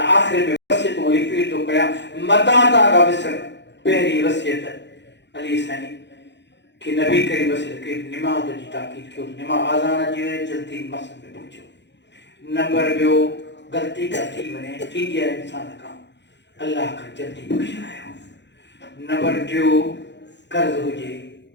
आख़िर में वसियतूं रिपीट थो कयां मता था विसर पहिरीं वसियत अली साईं कि नबी करीम वसियत कई निमाज़ जी ताक़ीद कयो निमाज़ आज़ान अची वञे जल्दी मस्जिद में पहुचो नंबर ॿियो गलती का थी वने थी है इंसान का अल्लाह का जल्दी बख्शायो नंबर 2 कर्ज हुजे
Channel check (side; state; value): right; late; 0.52 ms